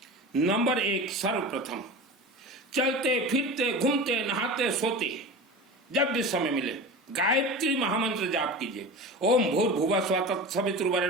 नंबर 1, सर्वप्रथम चलते फिरते घूमते नहाते सोते जब भी समय मिले गायत्री महामंत्र जाप कीजिए। ओम भूर्भुवः स्वः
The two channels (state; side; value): normal; both; correlation 0.31